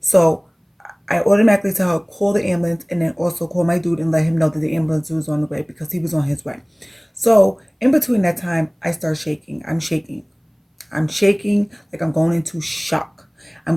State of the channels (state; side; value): identical; both; correlation 1.00